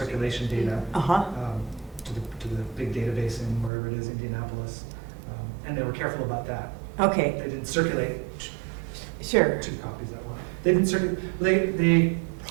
data uh-huh, to the big database in wherever it is, Indianapolis. And they were careful about that. okay, They didn't circulate sure, 2 copies at once. They didn't circulate, they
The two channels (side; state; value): left; drops out; at 3.7 s